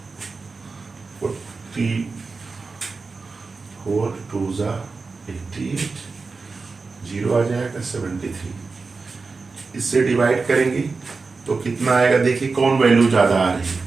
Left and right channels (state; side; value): quieter; left; 4.3 dB